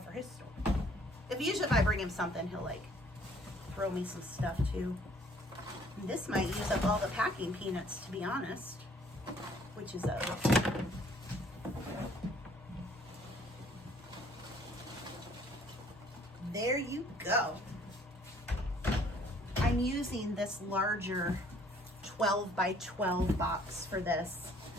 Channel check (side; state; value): both; normal; correlation 0.59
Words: for his store. Usually if I bring him something, he'll like throw me some stuff too. And this might use up all the packing peanuts, to be honest, which is there you go. I'm using this larger 12 by 12 box for this.